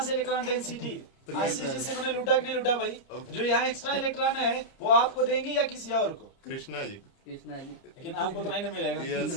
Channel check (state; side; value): late; right; 30 ms